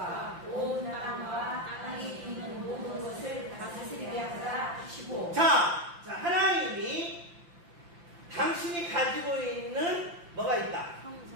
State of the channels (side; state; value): left; late; 5.8 ms